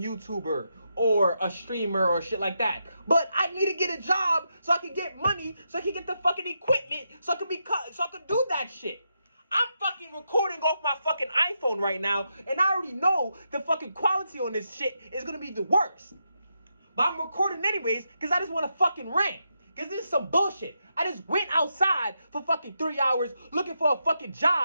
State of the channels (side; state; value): both; inverted; correlation -0.84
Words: YouTuber or a streamer or shit like that. But I need to get a job so I can get money, so I can get the fucking equipment, so I can do that shit. I'm fucking recording off my fucking iPhone right now, and I already know the fucking quality on this shit is gonna be the worst. But I'm recording anyways, because I just want to fucking rant. Because this is some bullshit. I just went outside for fucking 3 hours looking for a fucking